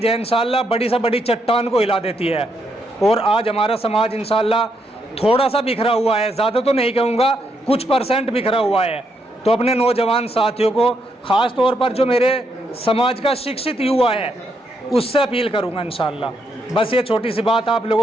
है इंशाल्लाह, बड़ी से बड़ी चट्टान को हिला देती है। और आज हमारा समाज इंशाल्लाह थोड़ा सा बिखरा हुआ है, ज़्यादा तो नहीं कहूँगा, कुछ % बिखरा हुआ है। तो अपने नौजवान साथियों को, ख़ास तौर पर जो मेरे समाज का शिक्षित युवा है, उससे अपील करूँगा इंशाल्लाह। बस ये छोटी सी बात आप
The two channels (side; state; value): both; normal; correlation 0.78